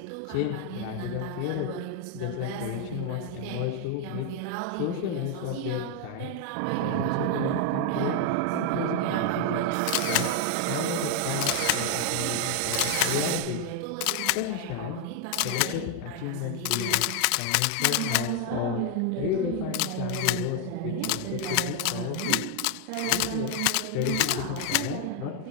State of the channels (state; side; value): different; both; correlation 0.01